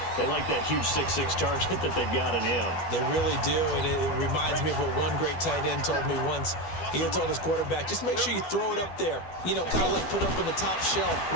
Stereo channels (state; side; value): late; right; 12 ms